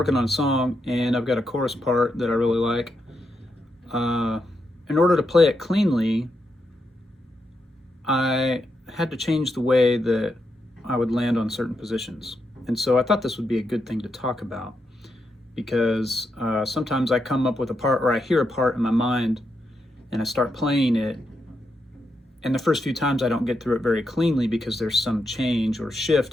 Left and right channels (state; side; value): normal; both; correlation 0.83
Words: on a song and I've got a chorus part that I really like. In order to play it cleanly, I had to change the way that I would land on certain positions. And so I thought this would be a good thing to talk about because sometimes I come up with a part or I hear a part in my mind and I start playing it. And the first few times I don't get through it very cleanly because there's some change or